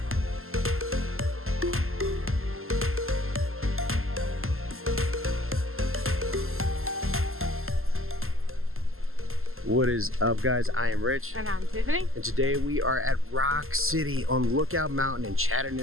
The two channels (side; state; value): left; late; 0.62 ms